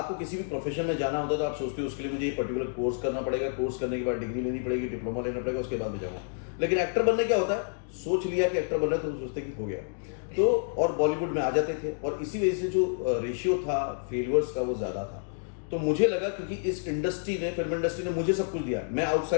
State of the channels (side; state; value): right; silent; digital silence